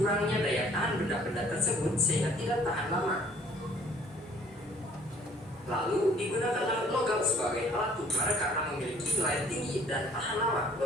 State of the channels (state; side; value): normal; both; correlation 0.57